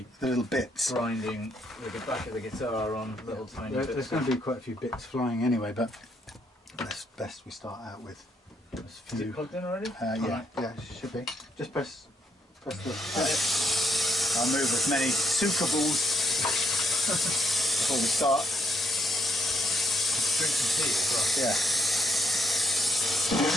the little bits. grinding with the back of the guitar on little tiny bits. There's going to be quite a few bits flying anyway, but it's best we start out with a Is few. it plugged in already? Yeah, it should be. Just press the. I'll move as many sukables before we start. Drink some tea as well. Yeah.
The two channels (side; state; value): both; normal; correlation 0.75